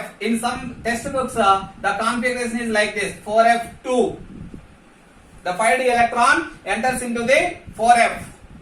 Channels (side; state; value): both; identical; correlation 1.00